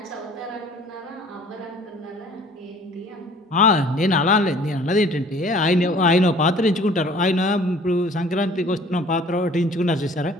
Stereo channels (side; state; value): both; normal; correlation 0.52